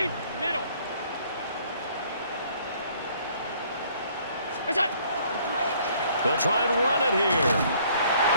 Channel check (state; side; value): inverted; both; correlation -0.60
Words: Middle. They'll try and run it here.